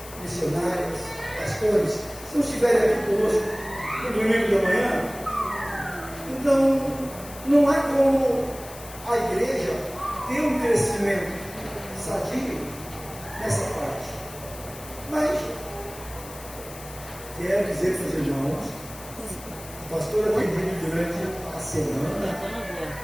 missionários, pastores, se não estiverem aqui conosco no domingo da manhã, então não há como a igreja ter um crescimento sadio nessa parte. Mas quero dizer para os irmãos, a pastora tem dito durante a semana,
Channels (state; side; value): noise; left; hiss, 16 dB below the sound